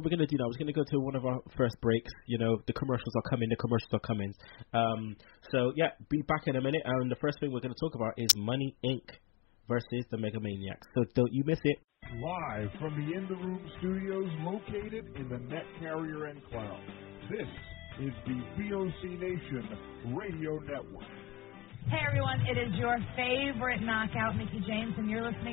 we're gonna do now is we're gonna go to one of our first breaks. You know, the commercials are coming. So yeah, be back in a minute. And the first thing we're gonna talk about is Money Inc. versus the Mega Maniacs. So don't you miss it. Live from the In the Room studios located in the Net Carrier Enclave. This is the VOC Nation Radio Network. Hey everyone, it is your favorite knockout, Mickie James, and you're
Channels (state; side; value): quieter; right; 21.4 dB